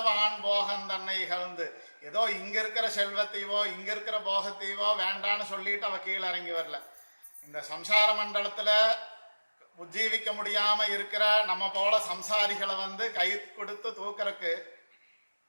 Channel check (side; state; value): both; inverted; correlation -1.00